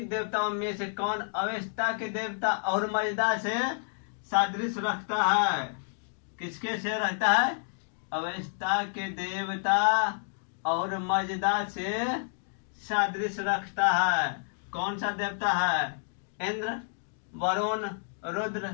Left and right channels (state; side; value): silent; right; digital silence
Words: देवताओं में से कौन अवेस्ता के देवता और मजदा से सादृश्य रखता है? किसके से रखता है? अवेस्ता के देवता और मजदा से सादृश्य रखता है। कौन सा देवता है? इंद्र, वरुण,